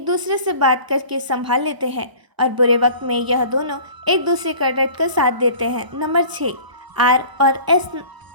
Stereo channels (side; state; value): left; late; 1.0 ms